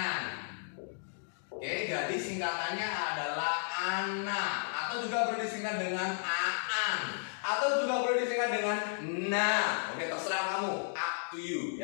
Jadi singkatannya adalah ana, atau juga boleh disingkat dengan aan, atau juga boleh disingkat dengan na. Terserah kamu. Up to you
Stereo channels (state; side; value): silent; right; digital silence